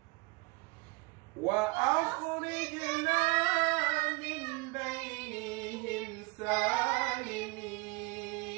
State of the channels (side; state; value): left; quieter; 25.9 dB